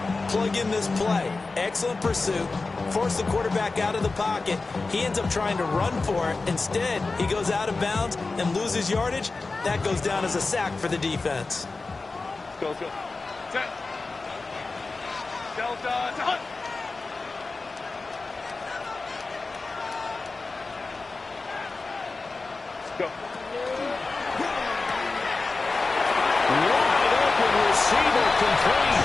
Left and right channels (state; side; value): quieter; right; 3.7 dB